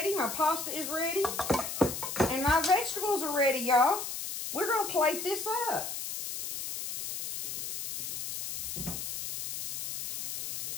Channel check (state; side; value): noise; left; hiss, 5 dB below the sound